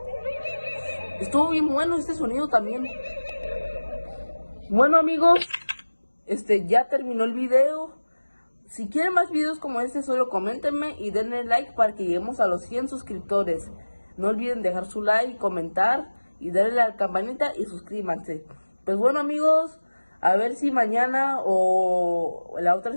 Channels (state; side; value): inverted; both; correlation -1.00